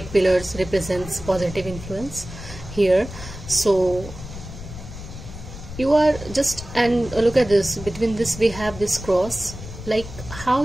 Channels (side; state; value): left; noise; rumble, 12 dB below the sound